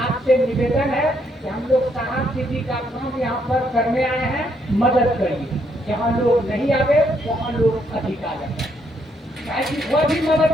निवेदन है कि हम लोग साहब दीदी का काम यहाँ पर करने आए हैं, मदद करिए। जहाँ लोग नहीं आवे वहाँ लोग अधिक आ जाते, वह भी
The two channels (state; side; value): normal; both; correlation 0.73